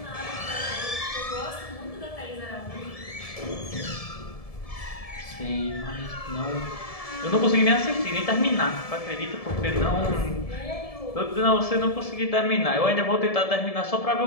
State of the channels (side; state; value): right; late; 1.7 ms